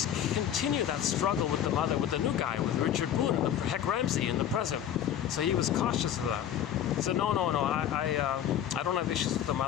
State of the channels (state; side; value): quieter; right; 10.0 dB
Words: continue that struggle with the mother, with the new guy, with Richard Boone, and Heck Ramsey in the present. So he was cautious of that. He said, no, I don't have issues with the